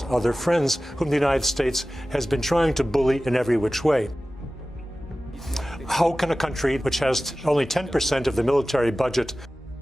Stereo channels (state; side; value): normal; both; correlation 0.96